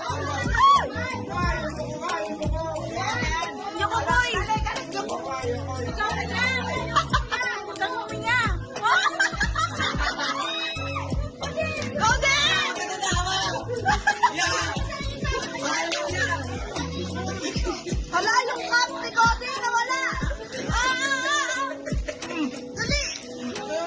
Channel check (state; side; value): identical; both; correlation 1.00